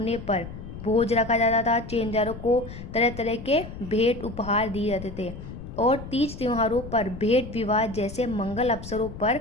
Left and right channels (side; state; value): left; noise; rumble, 11 dB below the sound